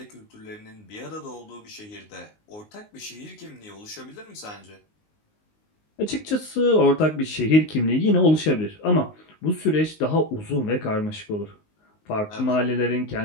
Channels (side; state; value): right; late; 19 ms